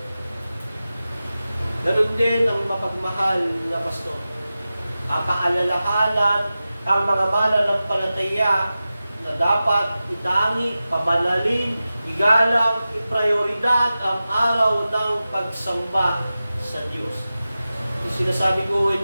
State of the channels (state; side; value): inverted; both; correlation -0.94